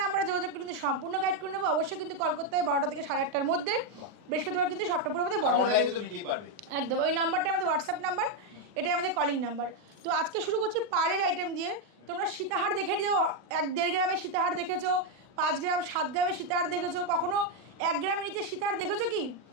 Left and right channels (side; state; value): left; late; 39 ms